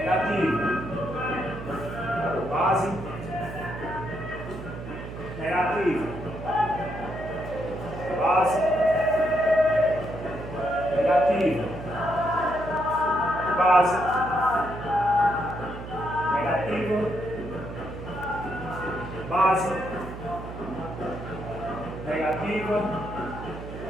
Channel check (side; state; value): right; noise; hum, 10 dB below the sound